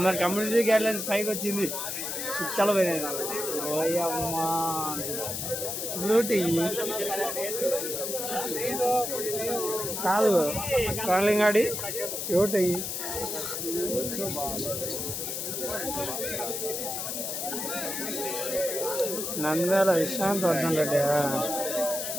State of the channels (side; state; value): left; noise; hiss, 3 dB below the sound